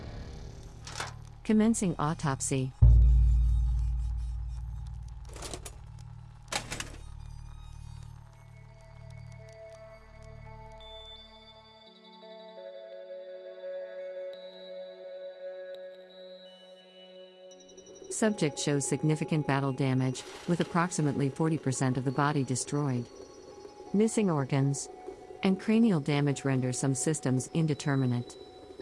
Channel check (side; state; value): both; identical; correlation 1.00